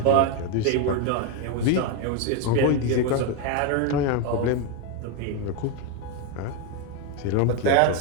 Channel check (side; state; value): both; different; correlation 0.02